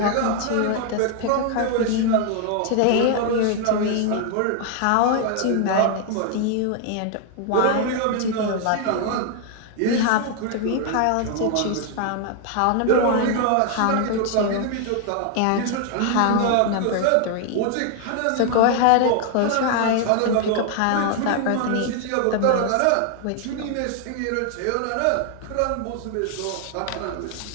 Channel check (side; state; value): both; different; correlation 0.00